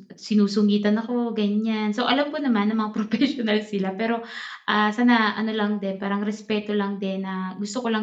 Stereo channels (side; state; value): both; identical; correlation 1.00